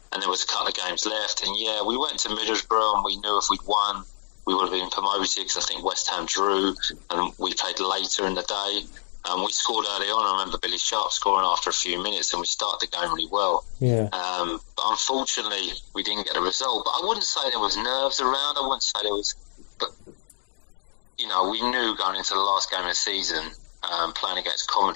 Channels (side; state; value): right; silent; digital silence